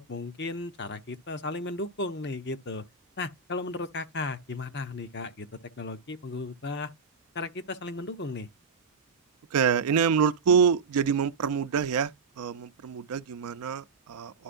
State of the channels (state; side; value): quieter; left; 4.6 dB